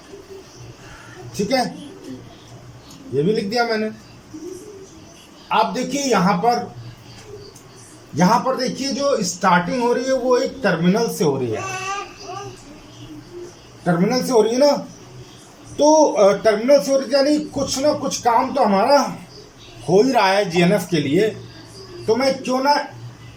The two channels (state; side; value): identical; both; correlation 1.00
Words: ठीक है, ये भी लिख दिया मैंने। आप देखिए यहां पर देखिए जो स्टार्टिंग हो रही है वो एक टर्मिनल से हो रही है, टर्मिनल से हो रही है ना। तो टर्मिनल से हो रही है यानी कुछ ना कुछ काम तो हमारा हो ही रहा है जीएनएफ के लिए। तो मैं क्यों ना